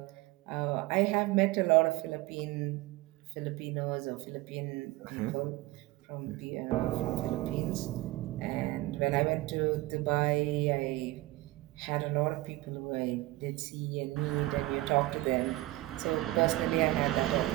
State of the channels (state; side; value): quieter; left; 18.9 dB